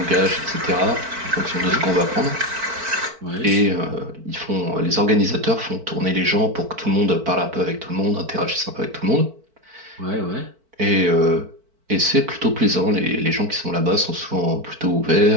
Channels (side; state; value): left; late; 4.5 ms